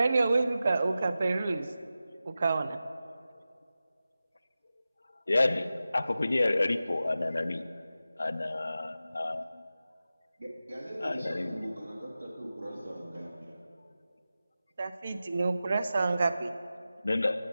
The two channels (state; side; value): inverted; both; correlation -0.94